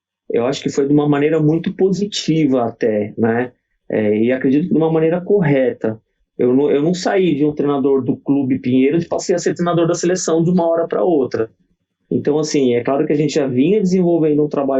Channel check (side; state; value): both; identical; correlation 1.00